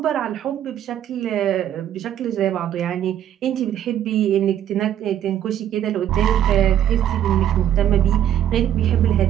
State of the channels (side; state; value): left; quieter; 10.8 dB